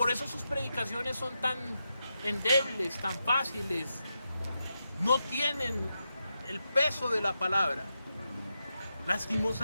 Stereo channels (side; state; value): both; inverted; correlation -0.87